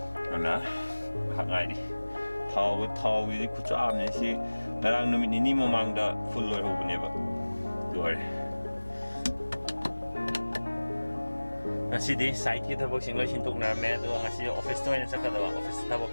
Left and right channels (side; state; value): both; inverted; correlation -1.00